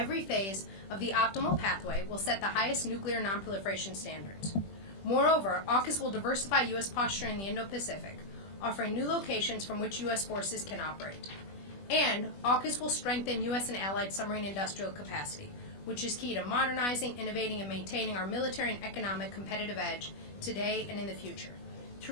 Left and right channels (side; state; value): right; late; 20 ms